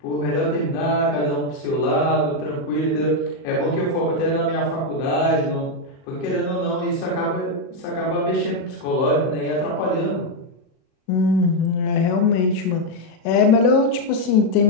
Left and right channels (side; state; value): right; late; 39 ms